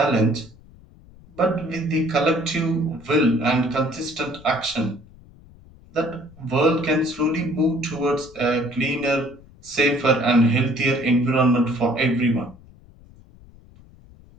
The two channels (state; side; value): noise; left; rumble, 24 dB below the sound